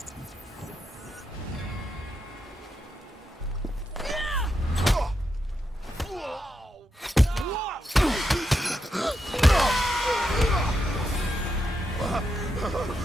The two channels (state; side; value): normal; both; correlation 0.84